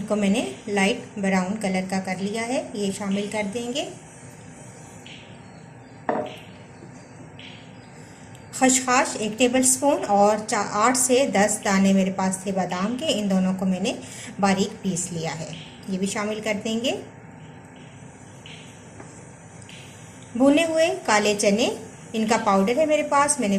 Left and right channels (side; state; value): both; identical; correlation 1.00